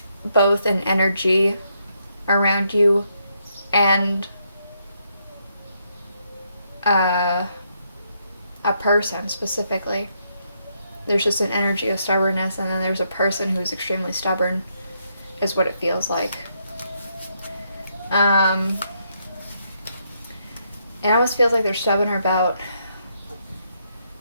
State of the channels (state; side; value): inverted; both; correlation -0.76